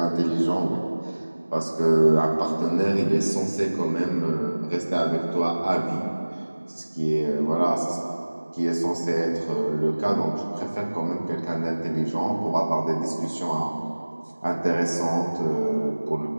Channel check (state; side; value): inverted; both; correlation -1.00